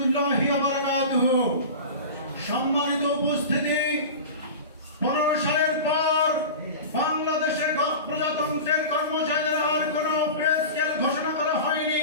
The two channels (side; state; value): both; inverted; correlation -0.32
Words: ওয়া বারাকাতুহু। সম্মানিত উপস্থিতি, 15 সালের পর বাংলাদেশের প্রজাতন্ত্রের কর্মচারীদের আর কোনো পে স্কেল ঘোষণা করা